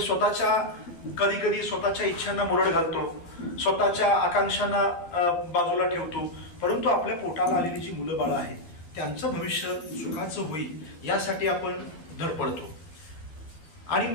कधी कधी स्वतःच्या इच्छांना मुरड घालतो, स्वतःच्या आकांक्षांना बाजूला ठेवतो, परंतु आपल्या पोटाला आलेली जी मुलं बाळं आहेत त्यांचं भविष्य सुखाचं होईल यासाठी आपण धडपडतो. आणि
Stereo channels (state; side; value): late; right; 13 ms